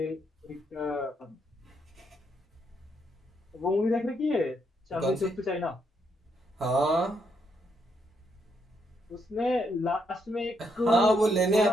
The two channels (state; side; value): normal; both; correlation 0.76